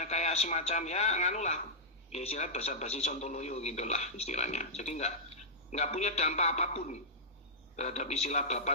semacam ya nganulah. Ya istilah basa-basi sontoloyo gitulah istilahnya. Jadi nggak punya dampak apapun terhadap istilah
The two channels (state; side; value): normal; both; correlation -0.11